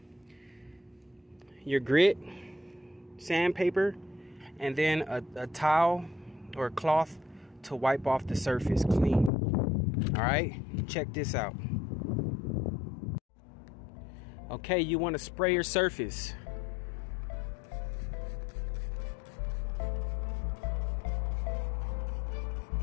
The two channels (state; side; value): drops out; right; at 9.3 s